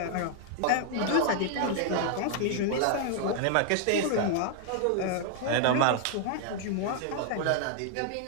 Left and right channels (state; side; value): different; both; correlation 0.00